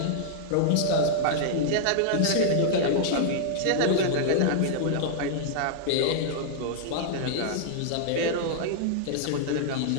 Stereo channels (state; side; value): different; both; correlation -0.01